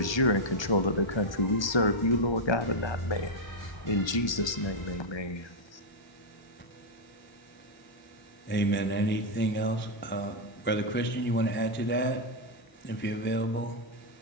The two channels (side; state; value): right; late; 1.2 ms